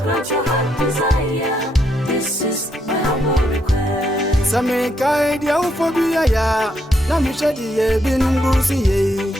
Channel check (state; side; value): normal; both; correlation 0.76